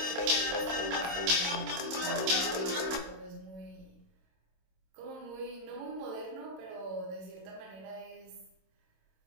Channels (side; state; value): left; late; 26 ms